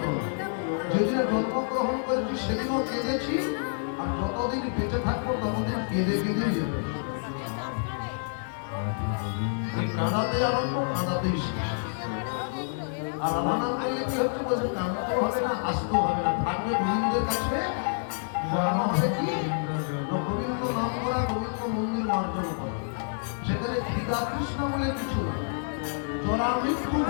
যেদিনে জন্মগ্রহণ করেছি সেদিনও কেঁদেছি, আর যতদিন বেঁচে থাকবো ততদিন কেঁদে কেঁদেই যেতে। কাঁদাতে আরম্ভ, কাঁদাতেই শেষ। আর রাধা নাম করলে কি হচ্ছে বলছে, কাঁদতেও হবে না, আসতেও হবে না, থাকবে গোবিন্দের কাছে। গোবিন্দ নাম করা, গোবিন্দ মন্দির অর্জন করা, সেখানে খিদা কৃষ্ণ বলে কিছু না, জরা মৃত্যু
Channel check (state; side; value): silent; right; 59 dB below the other